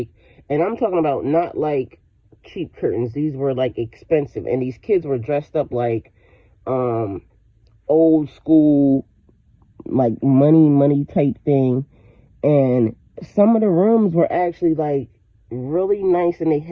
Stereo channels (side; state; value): both; identical; correlation 1.00